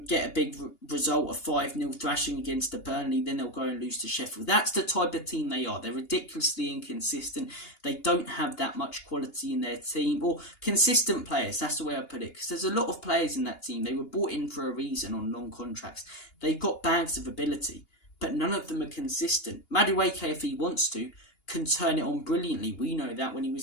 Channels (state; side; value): late; right; 2.8 ms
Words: get a big result of 5-0 thrashing against the Burnley. Then they'll go and lose to Sheffield. That's the type of team they are. They're ridiculously inconsistent. They don't have that much quality in their team. Or consistent players, that's the way I put it. Because there's a lot of players in that team. They were brought in for a reason on long contracts. They've got bags of ability, but none of them are consistent. Madueke, if he wants to, can turn it on brilliantly. We know that when he